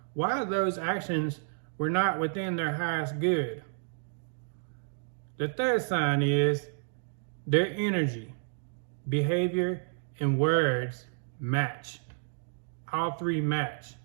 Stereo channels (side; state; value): left; silent; digital silence